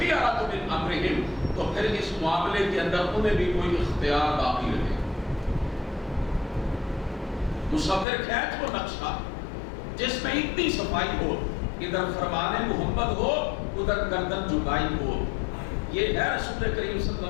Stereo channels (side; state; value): right; drops out; at 8.1 s